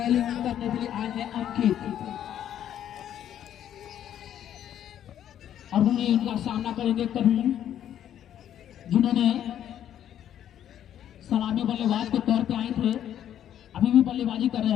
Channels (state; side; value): quieter; right; 10.5 dB